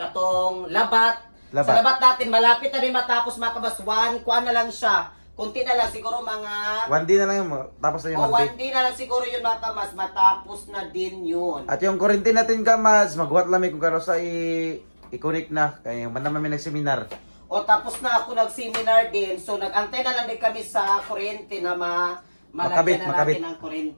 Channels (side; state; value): both; inverted; correlation -1.00